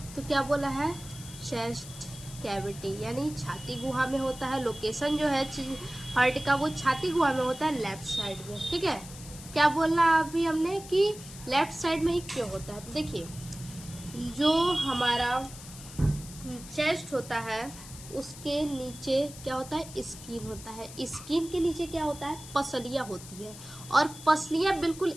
तो क्या बोला है, चेस्ट कैविटी, यानी छाती गुहा में होता है। लोकेशन जो है हार्ट का वो छाती गुहा में होता है, लेफ्ट साइड में, ठीक है। क्या बोलना अभी हमने कि लेफ्ट साइड में ही क्यों होता है, तो देखिए, जो हमारा चेस्ट होता है उसके नीचे क्या होता है, स्किन होता है। स्किन के नीचे क्या होता है, पसलियाँ होती है, और पसलियाँ बिल्कुल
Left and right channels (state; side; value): noise; left; hiss, 15 dB below the sound